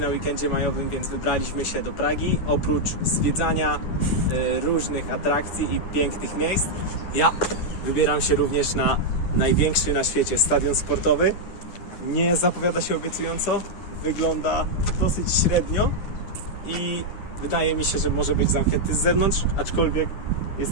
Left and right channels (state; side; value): late; right; 9.9 ms